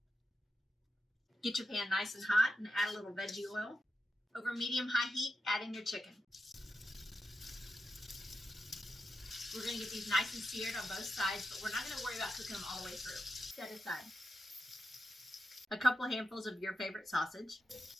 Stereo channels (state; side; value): normal; both; correlation 0.88